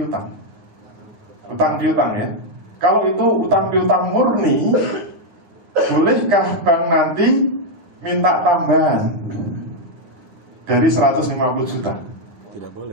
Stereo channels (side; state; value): left; late; 9.9 ms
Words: Utang piutang ya. Kalau itu utang piutang murni, bolehkah bank nanti minta tambahan dari 150 juta? Tidak